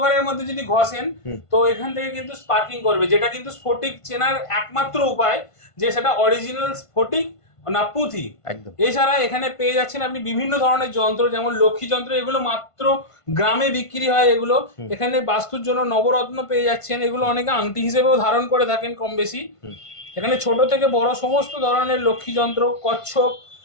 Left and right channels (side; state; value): right; late; 1.5 ms